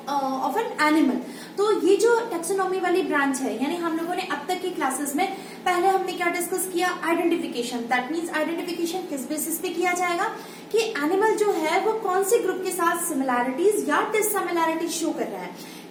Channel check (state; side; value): identical; both; correlation 1.00